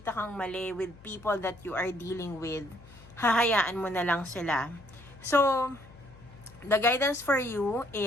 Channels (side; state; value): left; noise; hum, 22 dB below the sound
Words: kang mali with people that you are dealing with, hahayaan mo na lang sila. So, the guidance for you